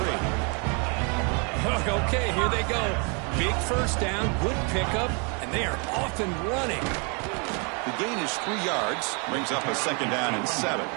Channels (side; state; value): left; quieter; 34.9 dB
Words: Okay, here they go. Big first down, good pickup, and they are off and running. The gain is 3 yards. Brings up a 2nd down and 7.